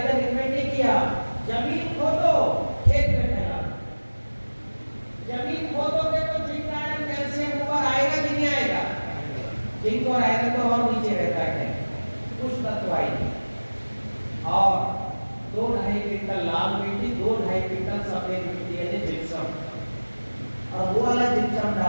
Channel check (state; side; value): inverted; both; correlation -1.00